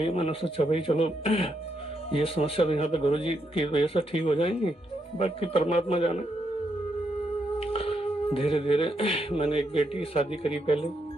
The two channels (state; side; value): normal; both; correlation 0.79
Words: मैंने सोचा भाई चलो ये समस्या तो यहाँ पे गुरुजी की वजह से ठीक हो जाएंगी, बाकी परमात्मा जाने। धीरे धीरे मैंने एक बेटी की शादी करी।